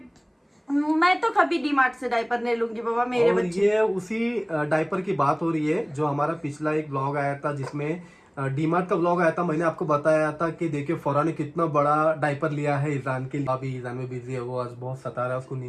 मैं तो कभी डीमार्ट से डायपर नहीं लूंगी बाबा मेरे और बच्चे। ये उसी डायपर की बात हो रही है जो हमारा पिछला एक ब्लॉग आया था, जिसमें डीमार्ट का ब्लॉग आया था। मैंने आपको बताया था कि देखिए फौरा ने कितना बड़ा डायपर लिया है ईजान के लिए। अभी ईजान में बिजी है, वो आज बहुत सता रहा है, उसको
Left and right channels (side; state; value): both; identical; correlation 1.00